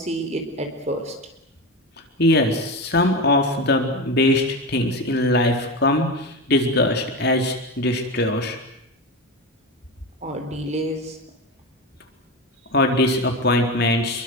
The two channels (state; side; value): normal; both; correlation 0.21